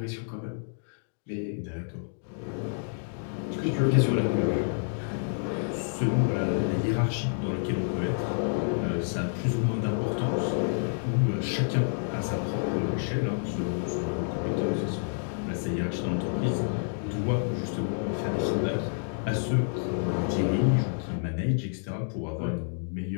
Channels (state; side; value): silent; right; digital silence